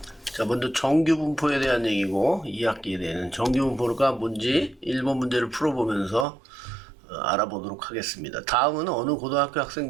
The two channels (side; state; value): left; drops out; at 6.2 s